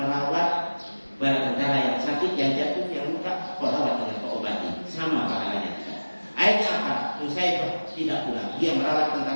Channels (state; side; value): inverted; both; correlation -1.00